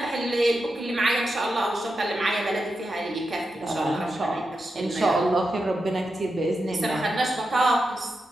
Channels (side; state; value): both; normal; correlation 0.88